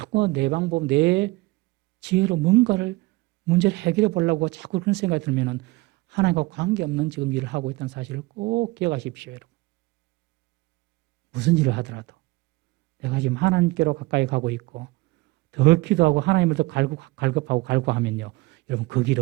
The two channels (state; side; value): quieter; left; 22.0 dB